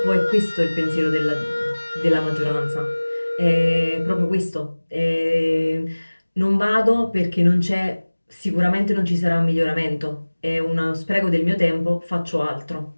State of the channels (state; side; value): inverted; both; correlation -1.00